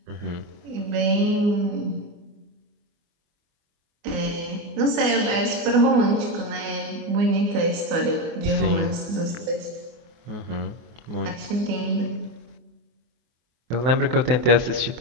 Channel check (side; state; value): left; late; 24 ms